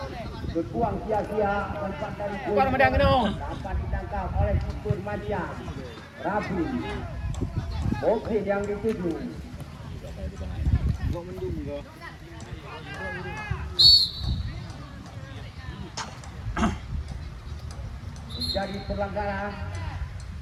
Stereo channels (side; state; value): both; identical; correlation 1.00